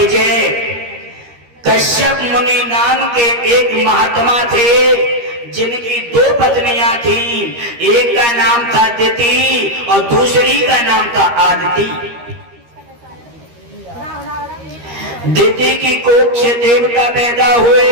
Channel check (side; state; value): left; late; 13 ms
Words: कश्यप मुनि नाम के एक महात्मा थे, जिनकी 2 पत्नियां थी। एक का नाम था दिति और दूसरी का नाम था आदिति। दिति की कोख से देवता पैदा हुए,